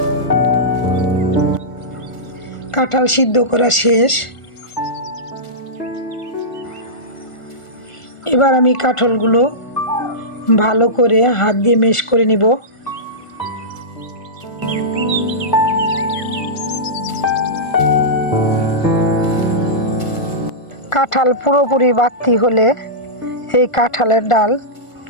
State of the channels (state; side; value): late; right; 1.4 ms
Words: কাঁঠাল সিদ্ধ করা শেষ। এবার আমি কাঁঠালগুলো ভালো করে হাত দিয়ে মেশ করে নিব। কাঁঠাল পুরোপুরি বাতি হলে এই কাঁঠালের ডাল